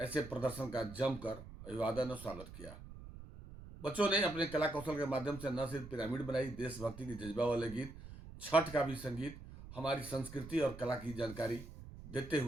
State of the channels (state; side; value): noise; right; rumble, 14 dB below the sound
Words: ऐसे प्रदर्शन का जमकर अभिवादन और स्वागत किया। बच्चों ने अपने कला कौशल के माध्यम से न सिर्फ पिरामिड बनाई, देशभक्ति की जज्बा वाले गीत, छठ का भी संगीत, हमारी संस्कृति और कला की जानकारी देते